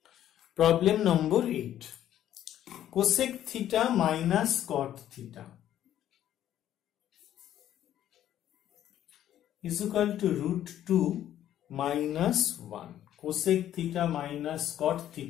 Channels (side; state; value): right; quieter; 11.6 dB